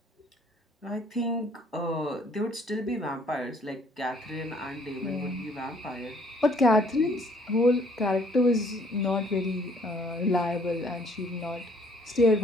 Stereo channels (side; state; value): both; normal; correlation 0.61